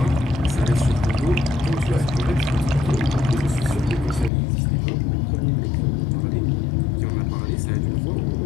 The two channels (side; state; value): right; drops out; at 4.3 s